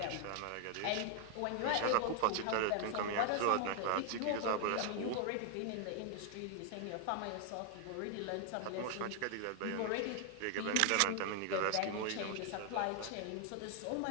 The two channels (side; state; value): both; different; correlation 0.00